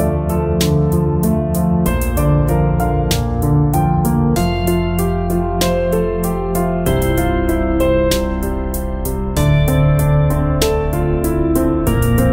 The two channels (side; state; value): both; identical; correlation 1.00